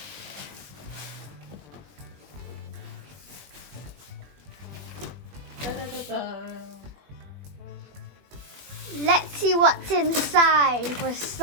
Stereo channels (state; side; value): late; left; 21 ms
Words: Da, da, da, da. Let's see what's inside. We're